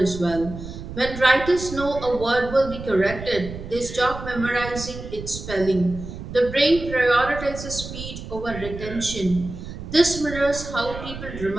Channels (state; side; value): noise; right; rumble, 10 dB below the sound